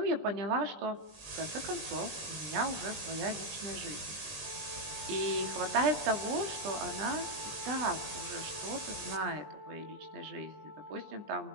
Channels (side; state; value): left; late; 20 ms